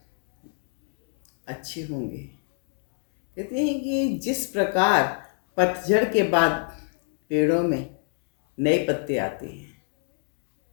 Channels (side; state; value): right; silent; 60 dB below the other